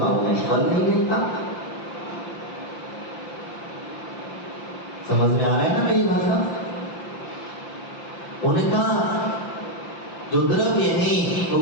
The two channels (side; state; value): right; late; 5.8 ms